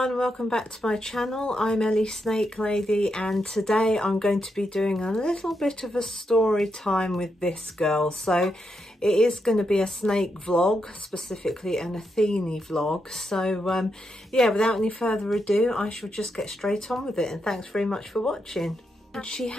welcome back to my channel. I'm Ellie Snake Lady, and today I'm going to be doing a little bit of a story time with this girl. So it is going to be a snake vlog, specifically an Athene vlog. So yeah, without any further ado, I shall just get straight on with it, and thanks very much for watching. She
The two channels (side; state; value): both; normal; correlation 0.83